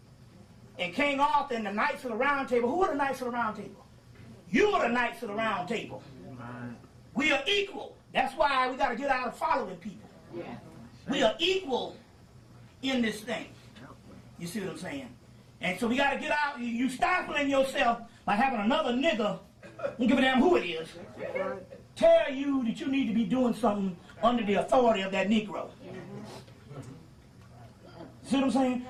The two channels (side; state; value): both; identical; correlation 1.00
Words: And King Arthur and the Knights of the Round Table, who are the Knights of the Round Table? You are the Knights of the Round Table. We are equal. That's why we got to get out of following people. Yeah. We are equal in this thing. You see what I'm saying? And so we got to get out. You stifling yourself by having another nigga, don't give a damn who it is, tell you that you need to be doing something under the authority of that Negro. See what I'm saying?